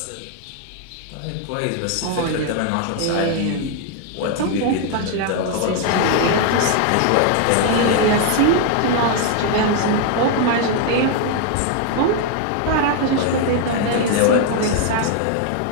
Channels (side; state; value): both; different; correlation 0.00